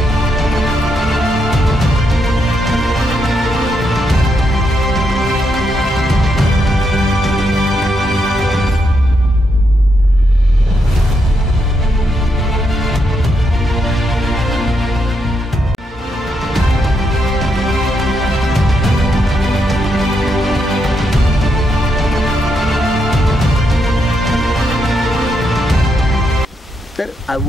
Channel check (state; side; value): normal; both; correlation 0.80